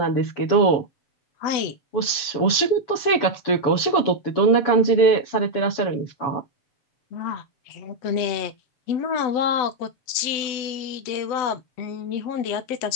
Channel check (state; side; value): late; right; 7.1 ms